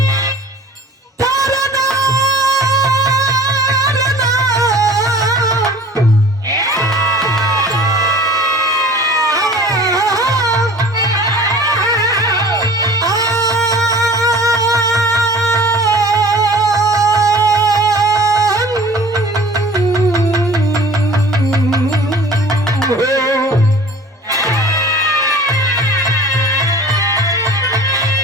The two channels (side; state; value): both; normal; correlation 0.45